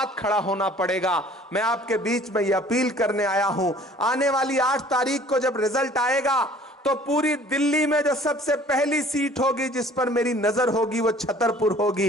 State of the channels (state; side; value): normal; both; correlation 0.52